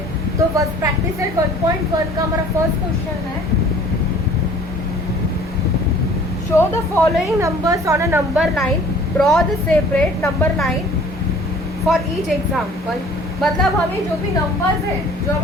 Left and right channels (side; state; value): both; normal; correlation 0.51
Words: हैं। तो बस प्रैक्टिस सेट 1.1 का हमारा फर्स्ट क्वेश्चन है, show the following numbers on a number line, draw the separate number line for each example. मतलब हमें जो भी नंबर्स है जो